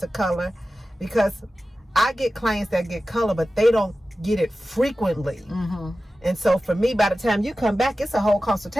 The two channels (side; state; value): both; normal; correlation 0.94